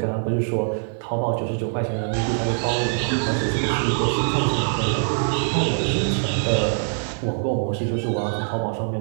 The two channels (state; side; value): silent; left; 58 dB below the other